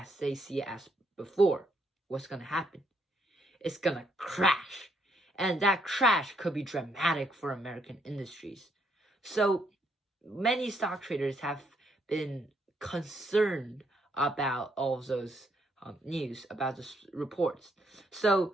they see it as before? What's gonna happen? It's gonna crash. And that crash could be dramatic for American industries. So many stock traders have been concerned about all of those news, about the reports.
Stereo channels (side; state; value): both; normal; correlation 0.73